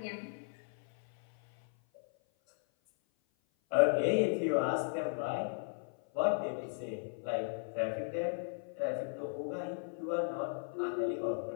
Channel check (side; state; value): right; silent; 54 dB below the other